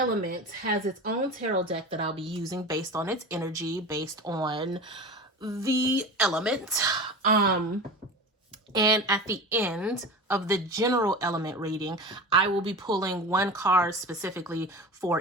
has its own tarot deck that I'll be using based on its energy, based on the element. And at the end of the general element reading, I will be pulling one card specifically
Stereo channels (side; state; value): both; normal; correlation 0.31